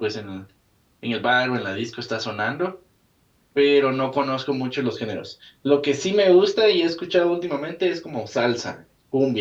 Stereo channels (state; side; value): identical; both; correlation 1.00